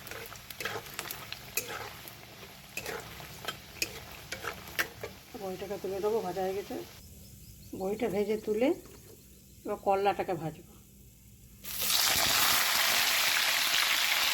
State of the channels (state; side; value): identical; both; correlation 1.00